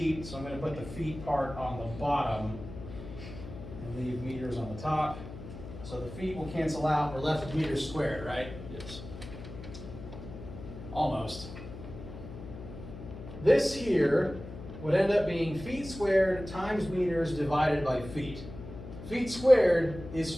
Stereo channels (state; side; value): noise; left; hum, 12 dB below the sound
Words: so I'm going to put the feet part on the bottom and leave meters on the top. So the feet will cancel out. We're left with meters squared, right? Yes. Almost. This here would end up being feet squared times meters divided by feet. Feet squared is